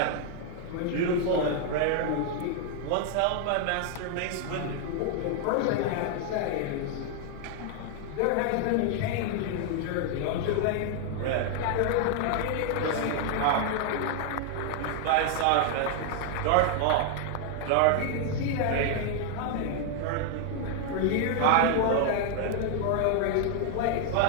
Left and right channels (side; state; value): both; different; correlation 0.00